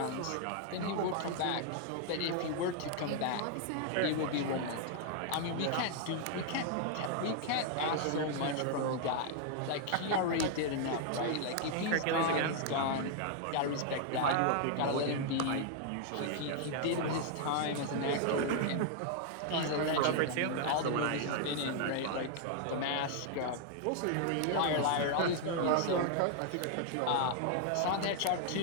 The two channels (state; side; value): different; both; correlation 0.00